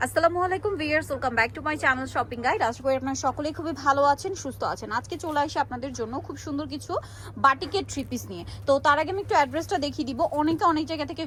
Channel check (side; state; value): both; identical; correlation 1.00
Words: আসসালামু আলাইকুম viewers, welcome back to my channel shopping guide. আশা করি আপনারা সকলেই খুবই ভালো আছেন, সুস্থ আছেন। আজকে চলে আসি আপনাদের জন্য খুব সুন্দর কিছু বাটিকের থ্রি পিস নিয়ে। তো তার আগে আমি একটু অ্যাড্রেসটা দেখিয়ে দিব। অনেকে অনেক জায়গা থেকে